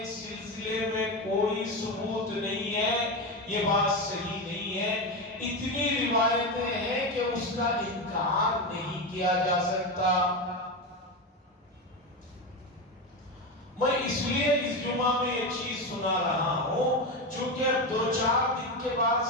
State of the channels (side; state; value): both; normal; correlation 0.16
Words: اس سلسلے میں کوئی ثبوت نہیں ہے، یہ بات صحیح نہیں ہے۔ اتنی روایتیں ہیں کہ اس اس کا انکار نہیں کیا جا سکتا۔ میں اس لیے اس جمعہ میں یہ چیز سنا رہا ہوں چونکہ اب 2-4 دن کے بعد